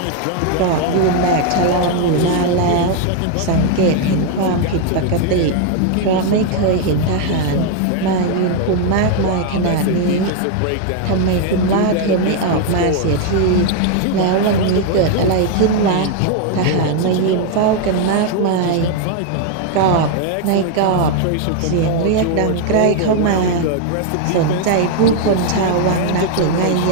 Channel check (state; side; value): different; both; correlation 0.00